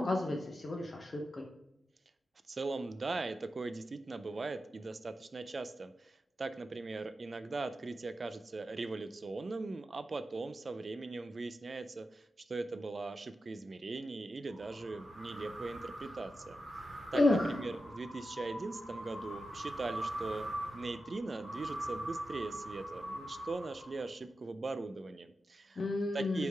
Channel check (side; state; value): both; normal; correlation 0.90